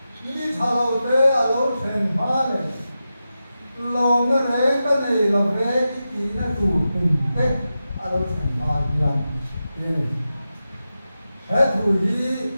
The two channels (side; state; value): both; inverted; correlation -0.92